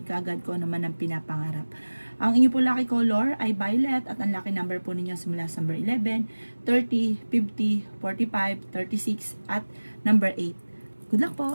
ka agad ko naman ang pinapangarap. Ang inyo po lucky color ay violet at ang lucky number po ninyo simula sa number 11, 30, 50, 45, 36 at number 8. Good luck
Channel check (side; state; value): both; inverted; correlation -1.00